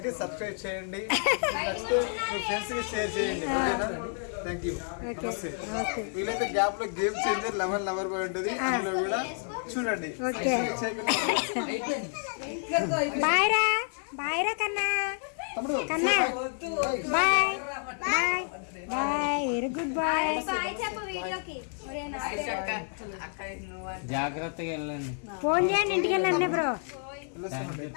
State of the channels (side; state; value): right; silent; 57 dB below the other